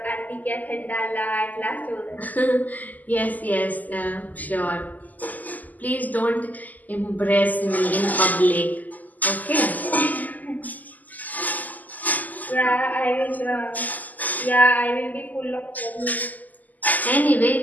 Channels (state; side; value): late; right; 0.081 ms